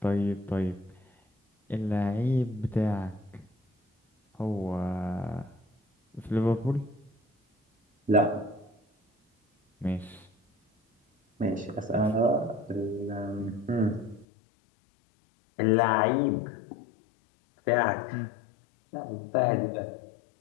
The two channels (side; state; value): right; drops out; at 14.2 s